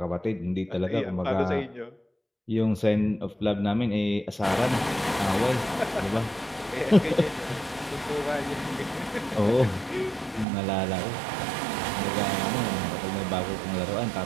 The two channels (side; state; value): left; drops out; at 10.5 s